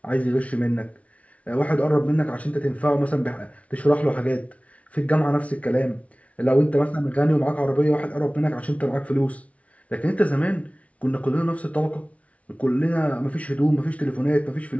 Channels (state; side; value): late; right; 0.065 ms